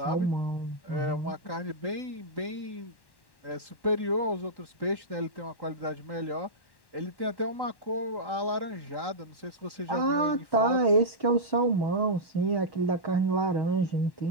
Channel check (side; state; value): right; late; 1.1 ms